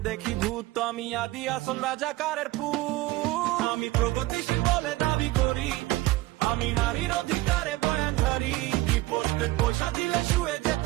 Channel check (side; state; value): left; quieter; 18.5 dB